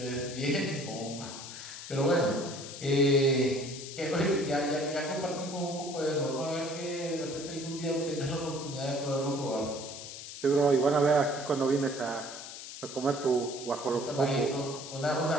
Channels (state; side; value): noise; left; hiss, 11 dB below the sound